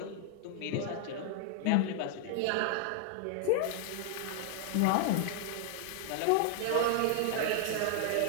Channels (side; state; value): both; different; correlation 0.00